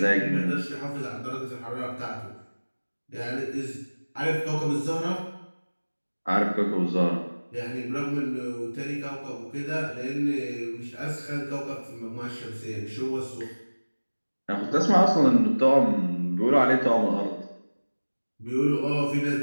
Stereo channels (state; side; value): inverted; both; correlation -1.00